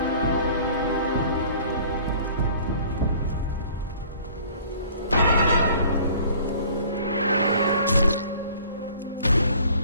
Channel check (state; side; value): inverted; both; correlation -0.51